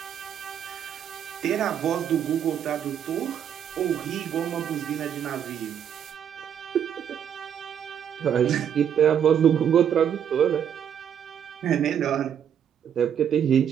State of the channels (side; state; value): left; quieter; 8.8 dB